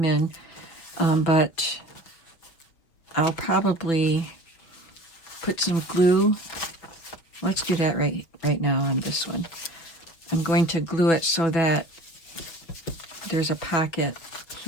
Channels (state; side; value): late; right; 6.2 ms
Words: in, but I'll probably put some glue. Let's do that right now on this one. I'm going to glue it so that there's a pocket